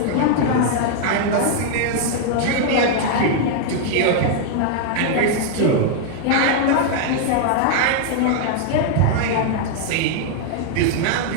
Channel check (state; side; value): different; both; correlation 0.00